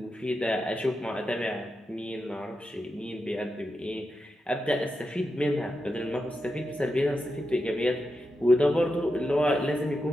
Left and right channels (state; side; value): normal; both; correlation 0.88